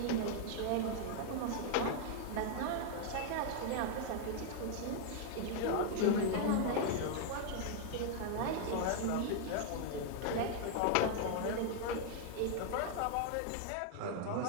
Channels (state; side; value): different; both; correlation 0.00